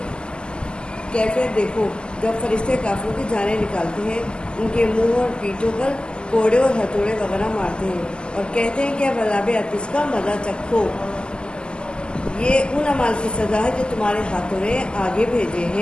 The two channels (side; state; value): right; late; 0.048 ms